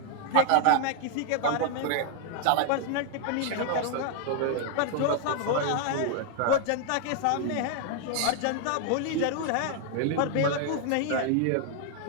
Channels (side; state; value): both; different; correlation 0.00